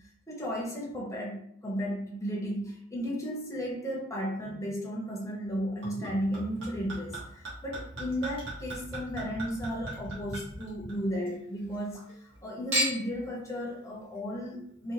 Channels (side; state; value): both; normal; correlation 0.57